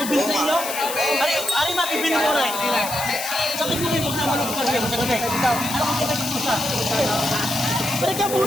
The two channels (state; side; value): noise; left; hiss, 6 dB below the sound